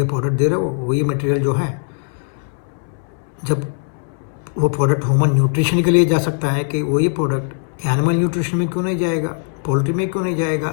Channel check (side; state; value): right; silent; 66 dB below the other